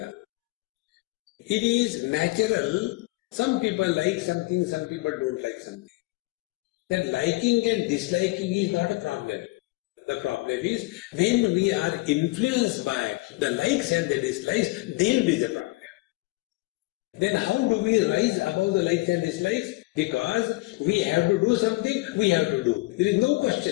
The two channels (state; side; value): quieter; right; 22.2 dB